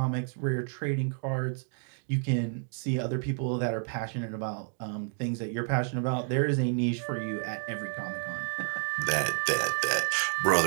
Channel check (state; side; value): silent; left; 58 dB below the other